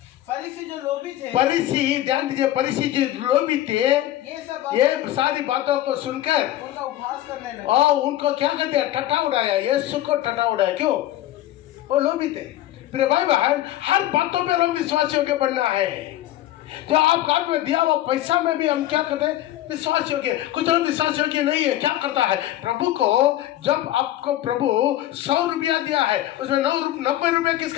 फरीसी जो लोभी थे, फरीसी ध्यान दीजिए, फरीसी जो लोभी थे ये सारी बातों को सुनकर उनका उपहास करने लगे और उनको क्या कर दिया? टटा उड़ाया। यीशु को टटा उड़ाया। क्यों? वो लोभी थे। प्रिय भाई बहन, हर बातों पे हम विश्वास योग्य बनना है। जो आपका हाथ में दिया हुआ पैसा में भी हम क्या करते हैं? विश्वास योग्य। कुछ लोग विश्वास योग्य नहीं है। क्या करता है? प्रभु को जब आपको प्रभु 100 रुपया दिया है उसमें 90 रुपया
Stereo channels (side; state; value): right; quieter; 14.1 dB